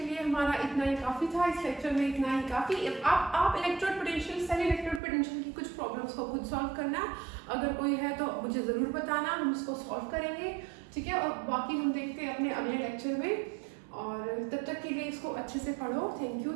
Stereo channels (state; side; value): drops out; left; at 5.0 s